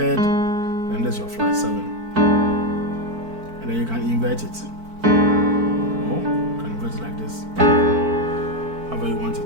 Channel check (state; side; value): late; left; 4.5 ms